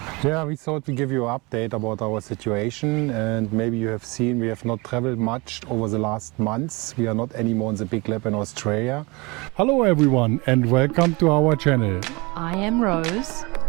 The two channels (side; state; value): left; quieter; 26.1 dB